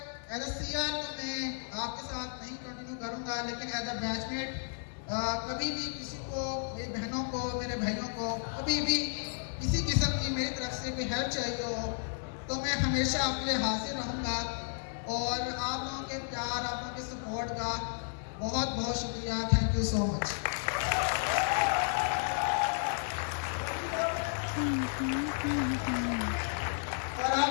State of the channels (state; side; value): silent; right; 56 dB below the other